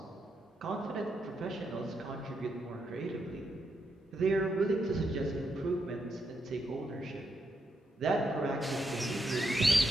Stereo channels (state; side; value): normal; both; correlation 0.81